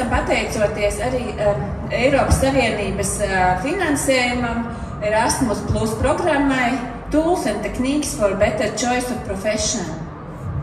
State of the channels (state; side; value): identical; both; correlation 1.00